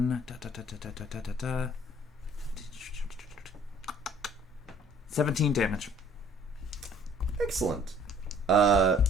17 damage. Excellent.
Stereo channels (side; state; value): both; normal; correlation 0.56